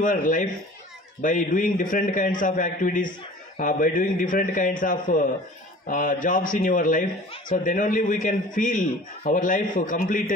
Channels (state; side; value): normal; both; correlation 0.45